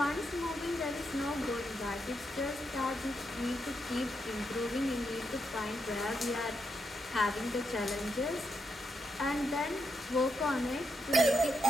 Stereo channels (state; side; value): normal; both; correlation 0.83